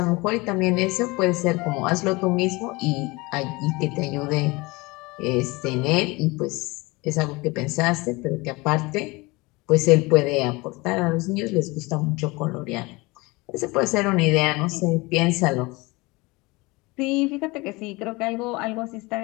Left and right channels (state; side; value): quieter; right; 23.8 dB